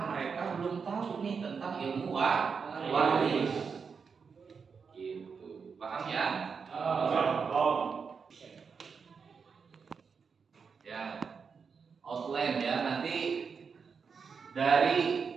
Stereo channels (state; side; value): quieter; left; 5.7 dB